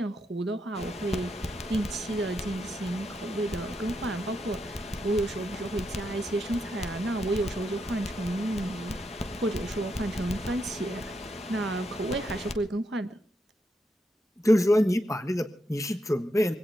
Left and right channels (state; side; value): normal; both; correlation 0.82